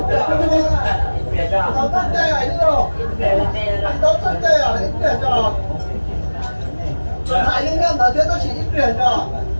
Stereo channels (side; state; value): both; inverted; correlation -1.00